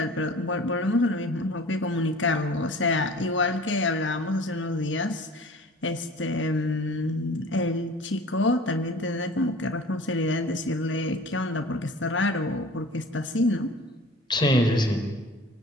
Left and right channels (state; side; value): normal; both; correlation 0.43